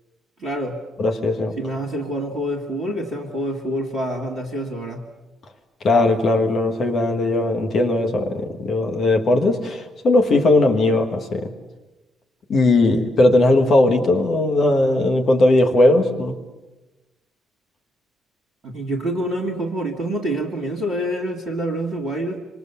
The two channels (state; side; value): normal; both; correlation 0.76